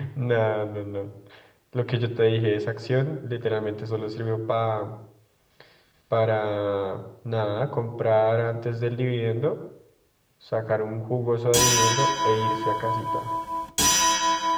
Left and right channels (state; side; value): identical; both; correlation 1.00